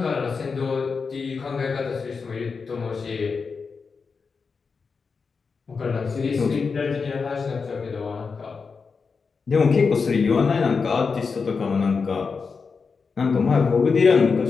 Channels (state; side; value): quieter; right; 5.1 dB